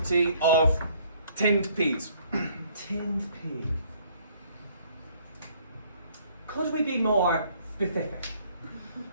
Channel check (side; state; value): both; inverted; correlation -0.61